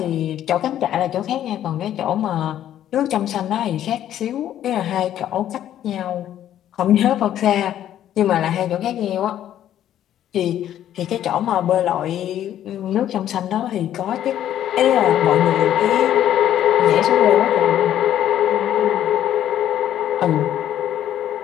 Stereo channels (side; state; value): right; quieter; 11.4 dB